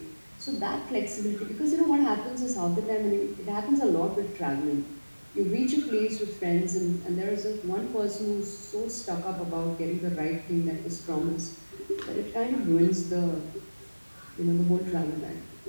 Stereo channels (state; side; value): inverted; both; correlation -1.00